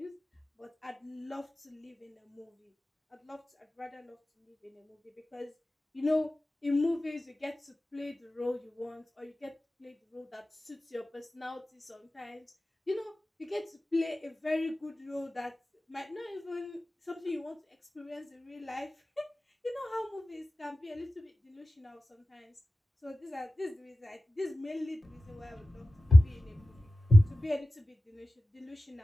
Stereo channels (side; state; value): both; normal; correlation 0.95